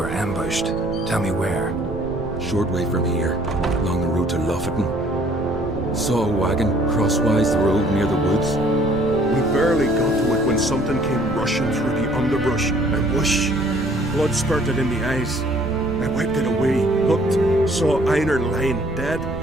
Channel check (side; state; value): right; noise; rumble, 11 dB below the sound